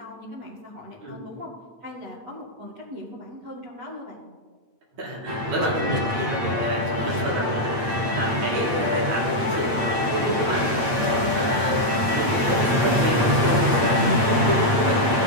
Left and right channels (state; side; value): late; left; 8.7 ms